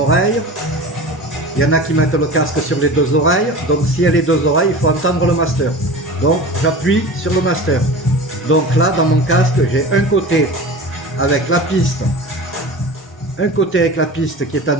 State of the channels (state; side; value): normal; both; correlation 0.34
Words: Il y en a qui mettent le casque sur les deux oreilles, donc si elle a les deux oreilles, il faut entendre le master. Donc j'appuie sur le master. Donc là dans mon casque, j'ai un côté avec la piste, qui est en